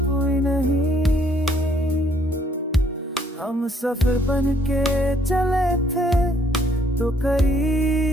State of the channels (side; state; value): both; normal; correlation 0.66